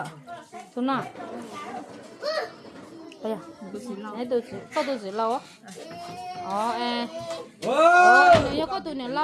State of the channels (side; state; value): both; identical; correlation 1.00